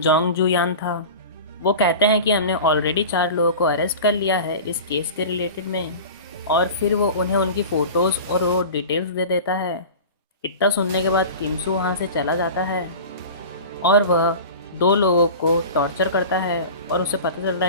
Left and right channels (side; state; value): both; inverted; correlation -0.35